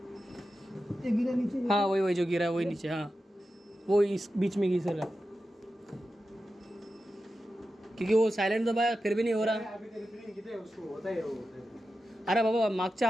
ये गिरा नीचे। हाँ वही वही जो गिरा है वही नीचे। हाँ वो इस बीच में घिस रहा है, क्योंकि वो सायलेंट दबाया फिर भी नहीं हो रहा। अभी तरी प्रिंट किती आहे उसको होता है वो। अरे बाबा मागच्या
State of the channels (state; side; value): normal; both; correlation 0.92